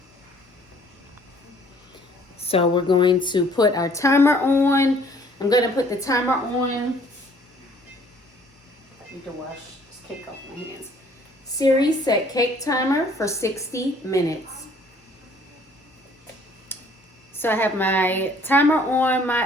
So we're going to put our timer on. I'm going to put the timer on. I need to wash this cake off my hands. Siri, set cake timer for 60 minutes. So I have my timer on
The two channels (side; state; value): both; normal; correlation 0.58